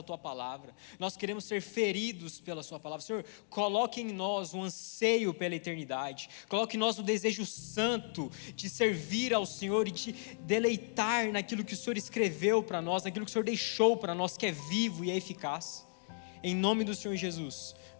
Tua palavra. Nós queremos ser feridos pela Sua palavra. Senhor, coloque em nós um anseio pela eternidade. Coloque em nós o desejo santo de servir ao Senhor e de deleitar naquilo que o Senhor escreveu para nós, naquilo que o Senhor deixou para nós, que é vivo e é eficaz. Em nome do Senhor Jesus,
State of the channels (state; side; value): silent; right; digital silence